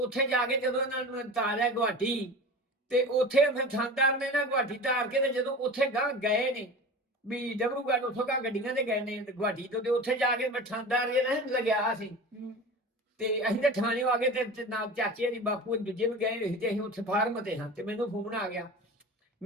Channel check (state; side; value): normal; both; correlation 0.33